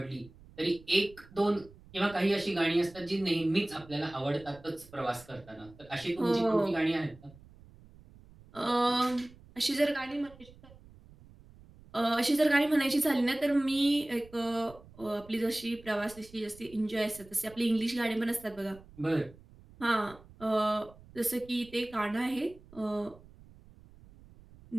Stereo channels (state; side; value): noise; right; rumble, 23 dB below the sound